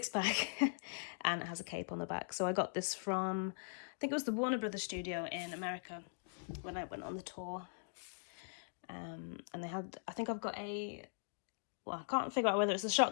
and it has a cape on the back. So I got this from, I think it was the Warner Brothers studio in America when I went on the tour. And they had, I think I've got a, well, I can't figure out whether it's a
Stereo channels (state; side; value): silent; right; digital silence